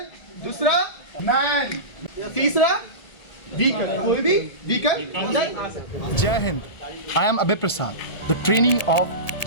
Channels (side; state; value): right; late; 1.8 ms